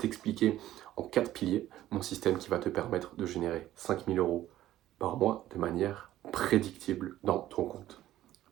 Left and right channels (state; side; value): quieter; left; 13.7 dB